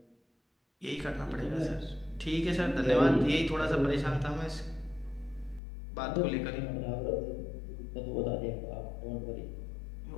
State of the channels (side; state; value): right; drops out; at 5.6 s